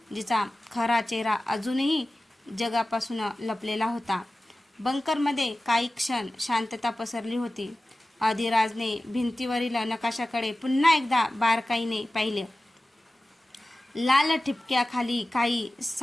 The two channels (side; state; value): both; normal; correlation 0.96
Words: जिचा खरा चेहरा अजूनही जगापासून लपलेला होता. बंकरमध्ये काही क्षण शांतता पसरली होती. अधिराजने भिंतीवरील नकाशाकडे पुन्हा एकदा बारकाईने पाहिले. लाल ठिपक्याखाली काही